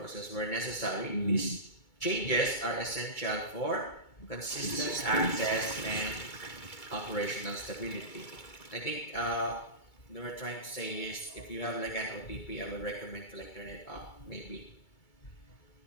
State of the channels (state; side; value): late; right; 2.3 ms